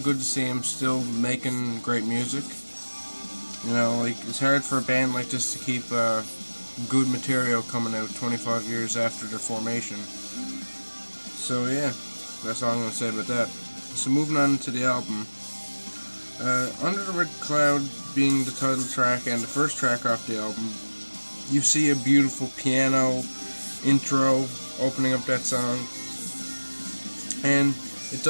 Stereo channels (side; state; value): both; inverted; correlation -1.00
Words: to see him still making great music. It's hard for a band like this to keep good material coming out 25 years after their formation. So yeah, that's all I'm going to say about that. So moving on to the album. Under the Red Cloud being the title track and the first track off the album, you see a beautiful piano intro opening up that song. And it